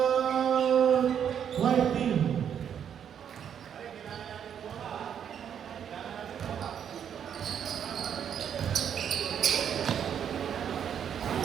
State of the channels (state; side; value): quieter; left; 8.6 dB